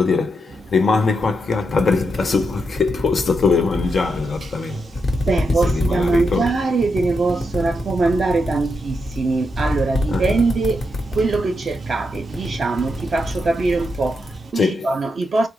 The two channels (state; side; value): normal; both; correlation 0.83